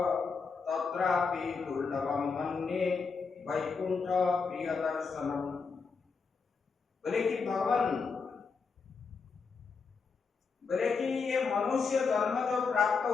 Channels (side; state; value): right; quieter; 5.1 dB